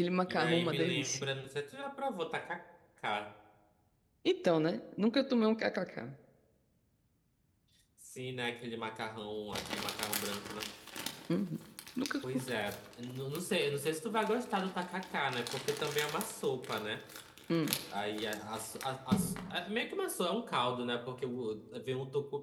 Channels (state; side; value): identical; both; correlation 1.00